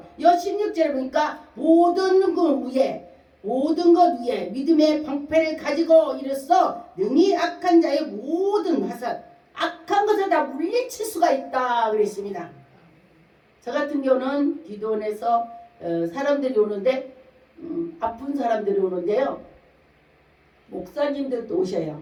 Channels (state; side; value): identical; both; correlation 1.00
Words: 여 16절에 보니까 모든 것 위에 믿음의 방패를 가지고 이르서 능히 악한 자의 모든 화살 악한 것을 다 물리칠 수가 있다 그랬습니다. 저 같은 경우는 기도원에서 사람들이 오는데 아픈 사람들이 오는데요. 목사님들도 오셔요.